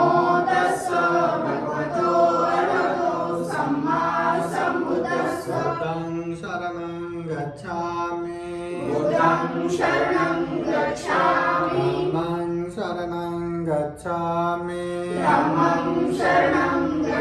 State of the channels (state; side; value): identical; both; correlation 1.00